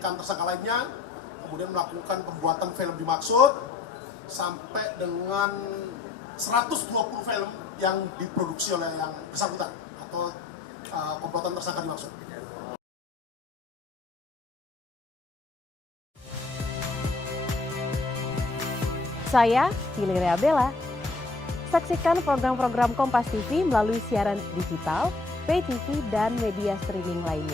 tersangka lainnya kemudian melakukan pembuatan film dimaksud sampai dengan 120 film yang diproduksi oleh yang bersangkutan atau pembuatan tersangka dimaksud. Saya Hilaria Bella. Saksikan program-program Kompas TV melalui siaran digital, pay TV, dan media streaming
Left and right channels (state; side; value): quieter; right; 3.8 dB